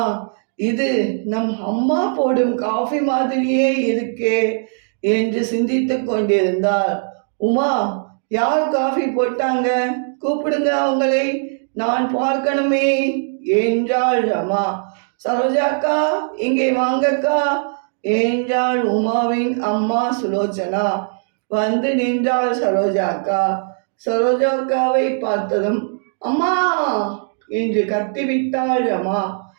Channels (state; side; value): silent; left; digital silence